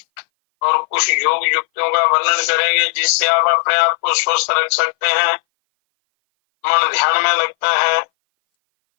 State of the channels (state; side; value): silent; right; 59 dB below the other